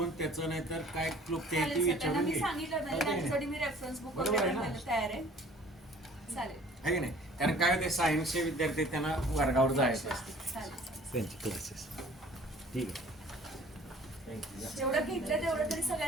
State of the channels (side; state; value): both; normal; correlation 0.51